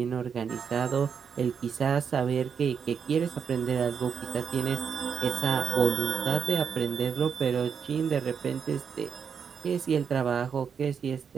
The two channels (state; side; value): quieter; left; 6.8 dB